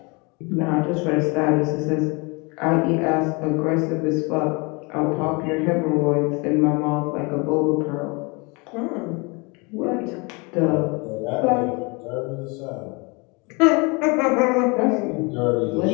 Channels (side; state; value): right; quieter; 29.1 dB